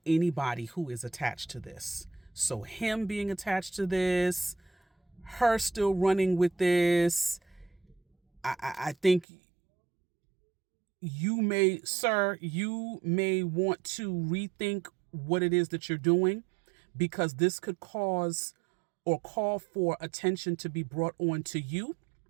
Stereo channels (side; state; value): left; drops out; at 9.2 s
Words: anybody who is attached to this. So him being attached to this, her still running with this, I think you may want to rethink what it is that you're doing, because this could cause or call for attention to be brought on to you,